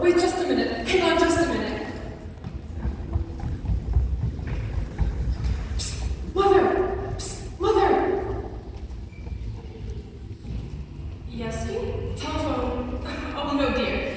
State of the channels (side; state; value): both; identical; correlation 1.00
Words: wait just a minute. Hang on just a minute. Psst, Mother! Psst, Mother! Yes, dear? Telephone. Oh, no, dear.